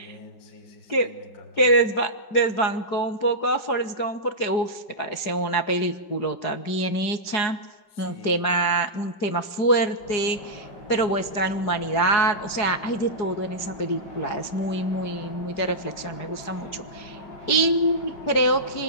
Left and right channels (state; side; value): late; right; 4.8 ms